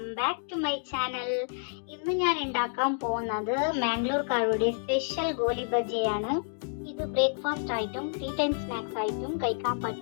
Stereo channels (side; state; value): right; silent; digital silence